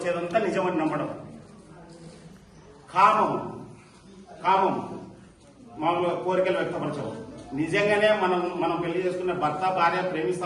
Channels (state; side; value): identical; both; correlation 1.00